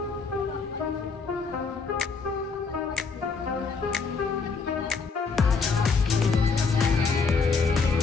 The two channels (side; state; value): right; quieter; 4.8 dB